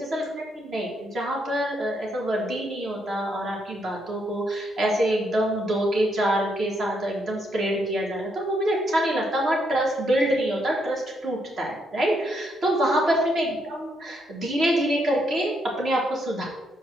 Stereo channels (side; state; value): both; normal; correlation 0.76